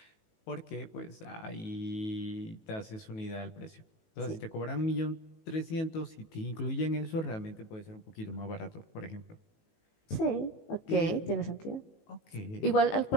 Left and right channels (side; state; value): right; late; 19 ms